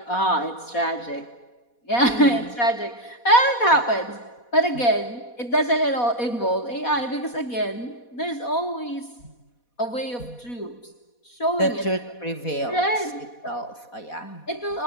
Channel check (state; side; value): late; right; 4.2 ms